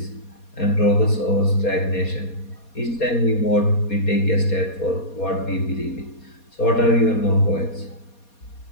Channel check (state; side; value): late; right; 4.2 ms